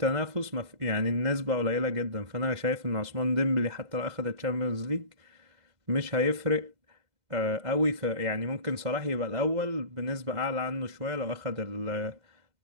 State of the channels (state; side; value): late; left; 2.1 ms